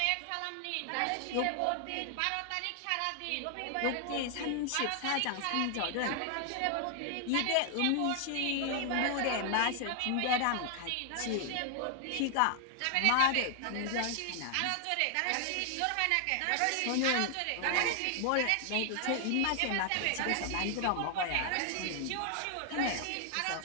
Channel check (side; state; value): both; different; correlation 0.00